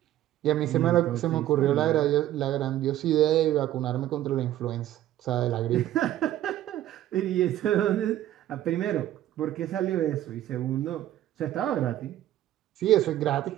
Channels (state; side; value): quieter; left; 13.2 dB